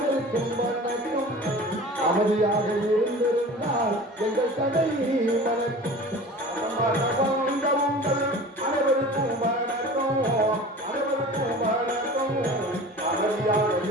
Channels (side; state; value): both; normal; correlation 0.39